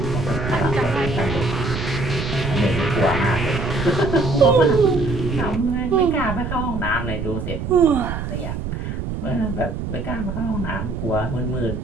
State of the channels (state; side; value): noise; right; rumble, 4 dB below the sound